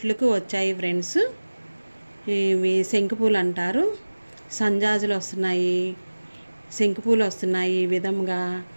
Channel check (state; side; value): inverted; both; correlation -1.00